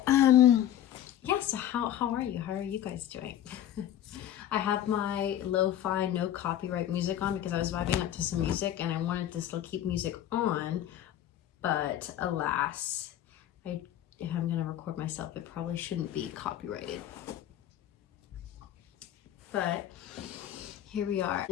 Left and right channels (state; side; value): quieter; right; 11.5 dB